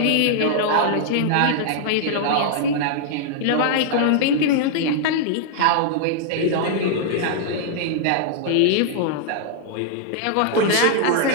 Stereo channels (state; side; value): different; both; correlation -0.01